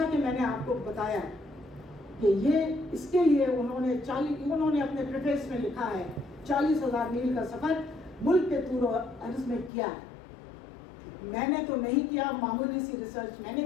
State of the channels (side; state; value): right; drops out; at 9.7 s